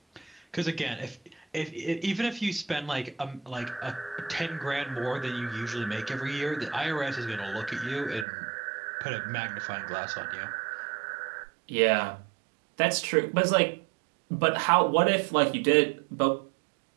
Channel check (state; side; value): drops out; left; at 8.2 s